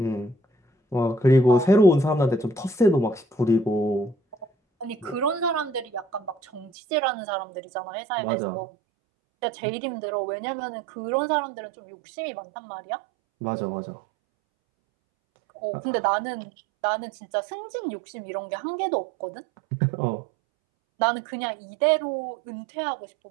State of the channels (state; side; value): drops out; left; at 6.7 s